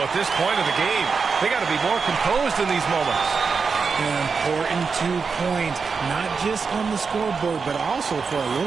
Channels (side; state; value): left; quieter; 5.2 dB